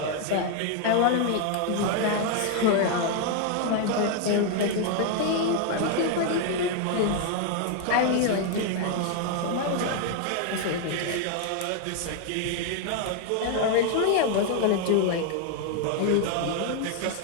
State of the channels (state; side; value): different; both; correlation 0.00